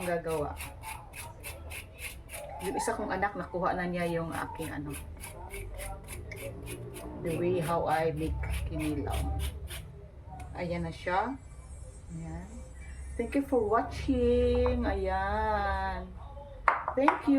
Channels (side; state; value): both; identical; correlation 1.00